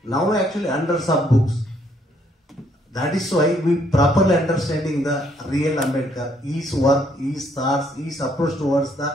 Now actually hundreds of books. That is why we properly understanding the real Ambedkar, his work, his thoughts, his approach towards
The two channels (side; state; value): both; normal; correlation 0.69